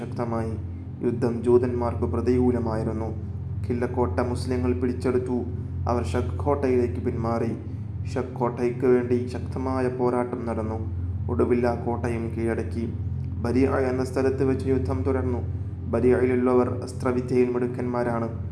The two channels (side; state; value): both; identical; correlation 1.00